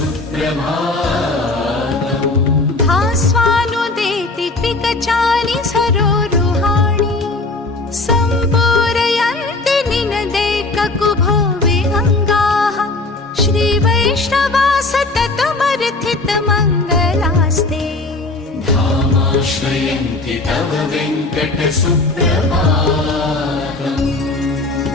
भास्वानुदेति त्रिकचानि सरोरुहाणि सम्पूरयन्ति निनदैककुभो विहङ्गाः श्रीवैष्णवा सततमर्थितमङ्गलास्ते धामाश्रयन्ति तव वेङ्कटसुप्रभातम्।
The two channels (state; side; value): quieter; right; 3.1 dB